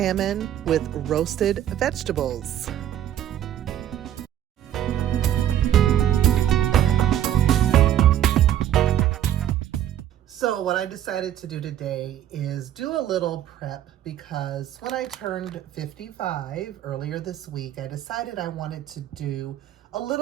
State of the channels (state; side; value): quieter; left; 11.4 dB